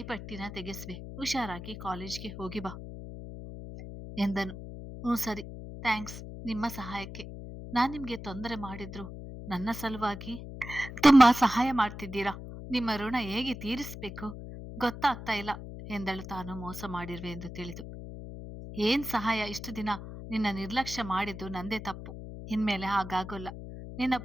ತೆಗೆಸ್ವೆ. ಹುಷಾರಾಗಿ ಕಾಲೇಜ್ಗೆ ಹೋಗಿ ಬಾ ಎಂದನು. ಸರಿ, ಥ್ಯಾಂಕ್ಸ್ ನಿಮ್ಮ ಸಹಾಯಕ್ಕೆ. ನಾನ್ ನಿಮ್ಗೆ ತೊಂದರೆ ಮಾಡಿದ್ರು ನನ್ನ ಸಲುವಾಗಿ ತುಂಬಾ ಸಹಾಯ ಮಾಡ್ತಿದ್ದೀರಾ. ನಿಮ್ಮ ಋಣ ಹೇಗೆ ತೀರಿಸ್ಬೇಕು ಗೊತ್ತಾಗ್ತಾ ಇಲ್ಲ ಎಂದಳು ತಾನು ಮೋಸ ಮಾಡಿರ್ವೆ ಎಂದು ತಿಳಿದು. ಏನ್ ಸಹಾಯ? ಇಷ್ಟು ದಿನ ನಿನ್ನ ನಿರ್ಲಕ್ಷ್ಯ ಮಾಡಿದ್ದು ನಂದೇ ತಪ್ಪು. ಇನ್ಮೇಲೆ ಹಾಗಾಗೋಲ್ಲ. ನಿನ್ನ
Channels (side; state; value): left; noise; hum, 10 dB below the sound